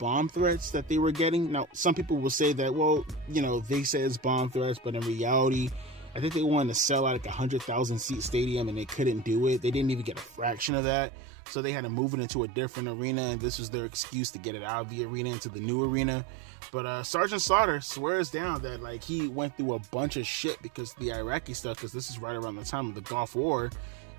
threats that they were getting. Now, some people will say that, well, you know, they say it's bomb threats, but in reality, I think they wanted to sell out like 100,000 seat stadium and they couldn't do it. They didn't even get a fraction of that. So they had to move it into a different arena, and this was their excuse to get it out of the arena into the new arena. But Sergeant Slaughter swears down that like he went through a bunch of shit because of the Iraqi stuff, because this is right around the time of the Gulf War.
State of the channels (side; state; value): left; drops out; at 10.7 s